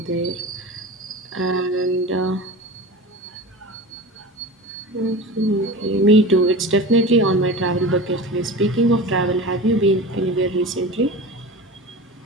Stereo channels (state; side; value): normal; both; correlation 0.32